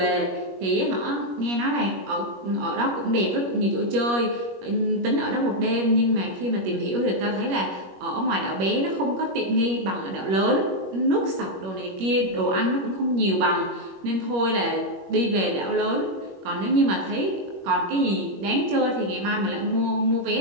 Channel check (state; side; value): late; left; 21 ms